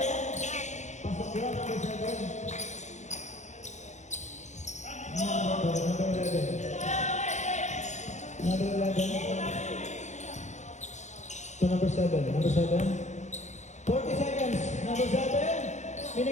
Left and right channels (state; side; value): late; right; 0.34 ms